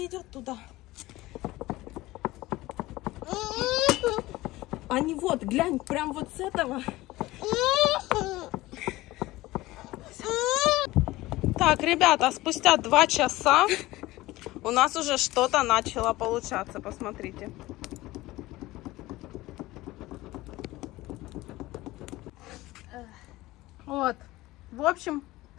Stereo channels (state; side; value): quieter; right; 18.5 dB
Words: идет туда. Они вот, глянь, прям вот с этого. Так, ребята, спустя 2 часа у нас уже что-то начало получаться. Посмотрите. Вот. В общем,